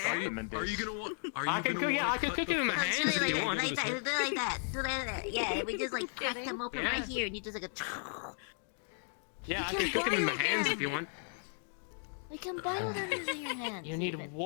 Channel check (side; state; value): right; silent; 55 dB below the other